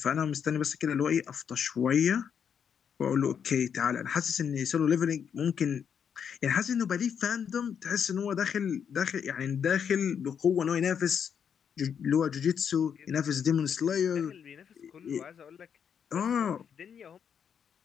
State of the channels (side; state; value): right; quieter; 7.6 dB